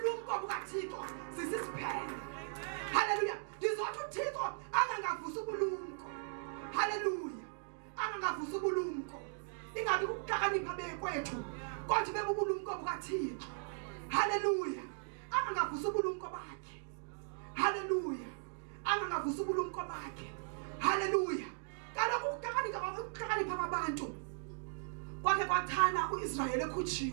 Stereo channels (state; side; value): silent; left; digital silence